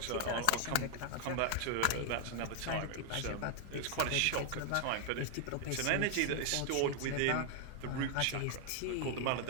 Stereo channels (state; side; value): different; both; correlation 0.00